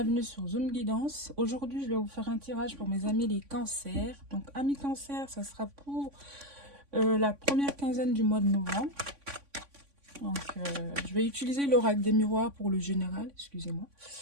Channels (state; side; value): late; left; 3.5 ms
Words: sur Zoom Guidance. Aujourd'hui, je vais vous faire un tirage pour mes amis les cancers. Donc, amis cancers, ça sera pour la première quinzaine du mois de novembre. Donc, je vais utiliser l'oracle des miroirs pour le général, excusez-moi.